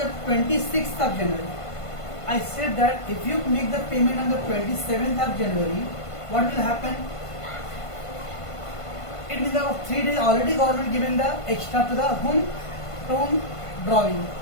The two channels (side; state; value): right; late; 1.5 ms